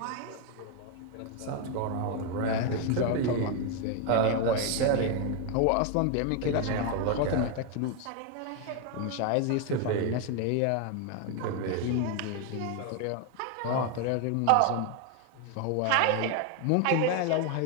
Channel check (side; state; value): both; different; correlation 0.01